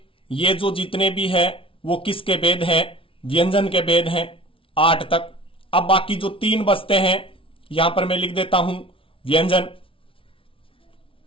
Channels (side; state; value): right; late; 0.26 ms